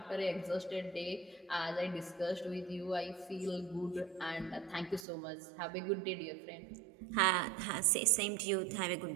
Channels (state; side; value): drops out; left; at 5.1 s